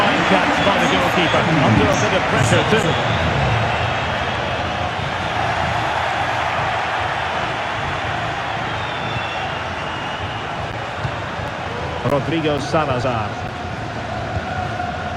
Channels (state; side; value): identical; both; correlation 1.00